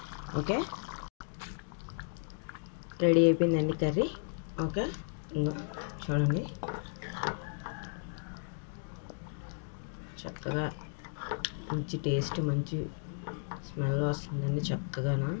ఓకే, రెడీ అయిపోయిందండి కర్రీ. ఓకే, ఇంకా చూడండి చక్కగా మంచి టేస్ట్, మంచి స్మెల్ వస్తుందండి. చక్కగానా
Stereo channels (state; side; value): silent; right; digital silence